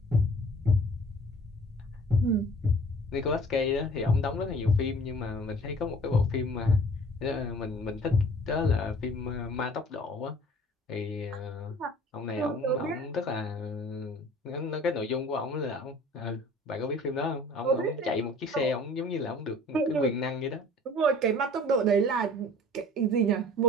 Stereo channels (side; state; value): both; normal; correlation 0.49